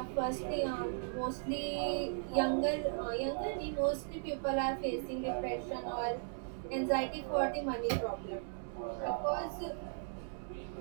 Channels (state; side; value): silent; left; digital silence